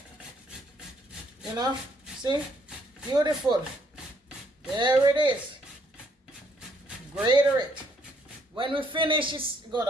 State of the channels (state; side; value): normal; both; correlation 0.69